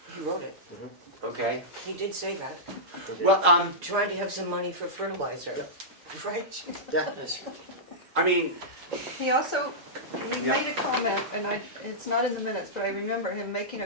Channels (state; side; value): normal; both; correlation -0.14